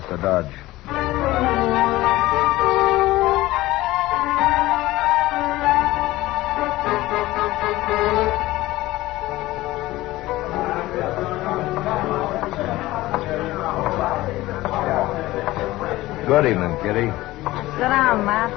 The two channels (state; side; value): quieter; right; 17.7 dB